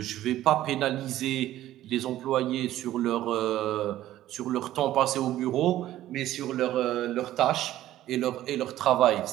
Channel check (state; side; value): quieter; left; 13.9 dB